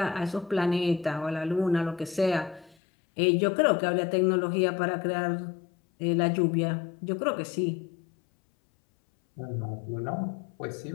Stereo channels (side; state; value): right; drops out; at 2.8 s